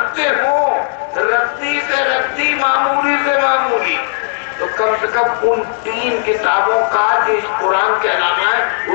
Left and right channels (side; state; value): right; silent; digital silence